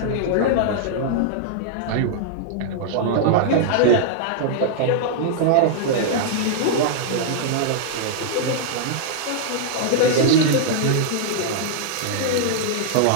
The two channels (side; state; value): both; different; correlation -0.01